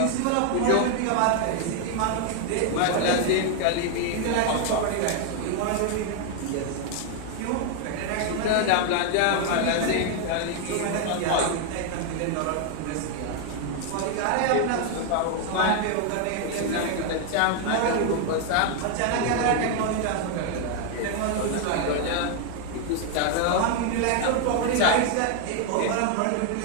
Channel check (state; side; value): different; both; correlation 0.01